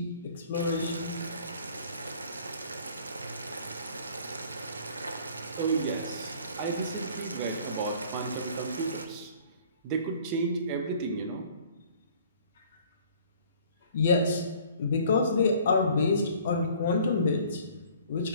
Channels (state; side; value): inverted; both; correlation -0.54